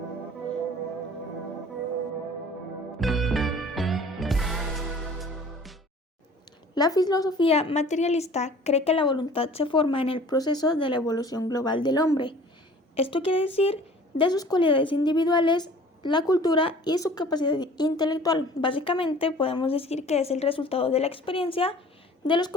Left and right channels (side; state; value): both; normal; correlation 0.48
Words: La filosofía materialista cree que la voluntad se forma en el proceso de la evolución global del hombre. Esto quiere decir de sus cualidades individuales, la cultura y su capacidad intelectual. Básicamente podemos decir que es el resultado de la experiencia, de los